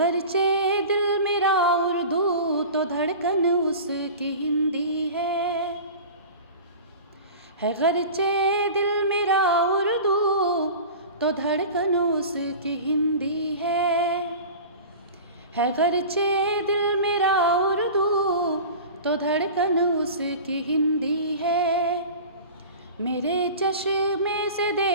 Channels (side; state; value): both; inverted; correlation -0.35